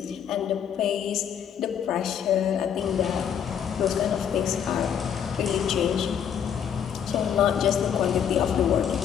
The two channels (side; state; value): right; quieter; 8.5 dB